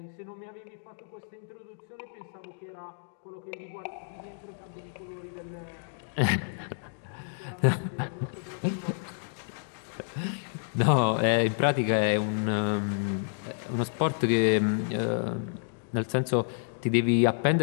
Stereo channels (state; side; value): silent; right; digital silence